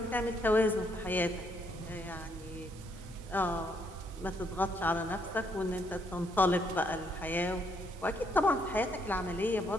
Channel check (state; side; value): normal; both; correlation 0.72